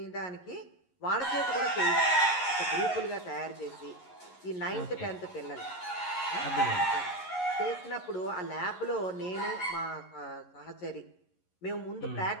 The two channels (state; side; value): late; right; 11 ms